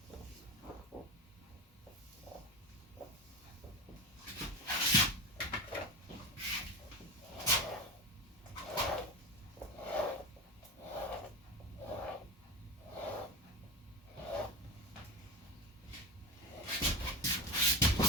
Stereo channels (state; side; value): normal; both; correlation 0.23